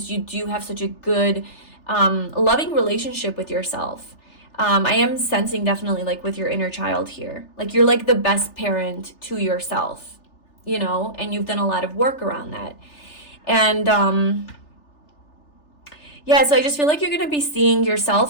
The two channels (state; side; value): late; right; 3.4 ms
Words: you do have such a good, loving relationship with yourself. I am sensing definitely like with your inner child here, like you're like the best parent to yourself, you know, and you've done a lot of work around that. And, yeah, so I just feel like you're going to be seeing